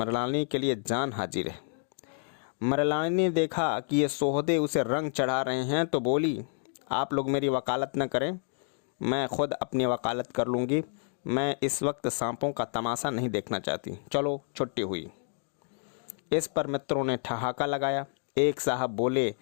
के लिए जान हाजिर है। मृणालिनी ने देखा कि ये सोहदे उसे रंग चढ़ा रहे हैं तो बोली, आप लोग मेरी वकालत न करें, मैं खुद अपनी वकालत कर लूँगी। मैं इस वक्त सांपों का तमाशा नहीं देखना चाहती, चलो छुट्टी हुई। इस पर मित्रों ने ठहाका लगाया। एक साहब बोले,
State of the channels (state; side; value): silent; right; 58 dB below the other